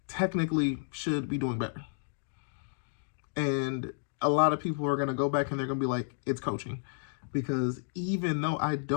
technically should be doing better. And a lot of people are going to go back and they're going to be like, it's coaching. Because even though I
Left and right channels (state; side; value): silent; right; digital silence